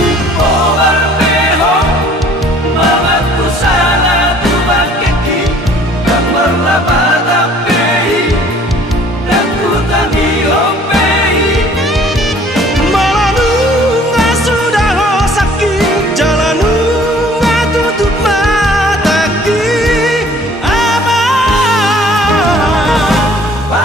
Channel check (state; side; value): normal; both; correlation 0.54